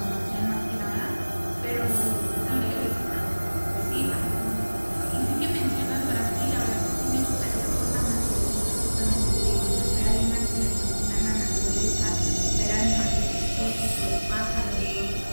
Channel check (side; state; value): both; inverted; correlation -1.00